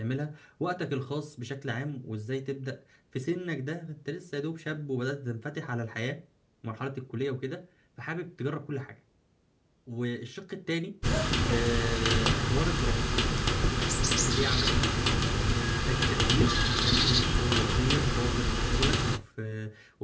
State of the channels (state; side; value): identical; both; correlation 1.00